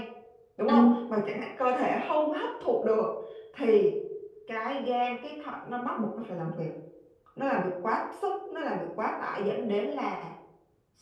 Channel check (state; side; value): identical; both; correlation 1.00